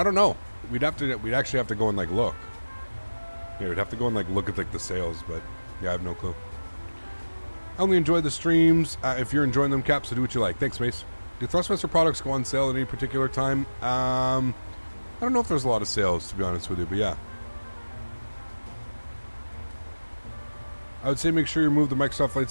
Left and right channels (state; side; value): inverted; both; correlation -1.00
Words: don't know. We'd actually have to go and like look. Yeah, we'd have to go and like look at like the sales, but yeah, I have no clue. I only enjoy the streams. If you're enjoying them, Cap, so do what you like. Thanks, Mace. Do Thrustmaster products go on sale at any particular time? I don't know if there's a lot of sales, to be honest with you, but yeah. I would say make sure you remove the Microsoft Flight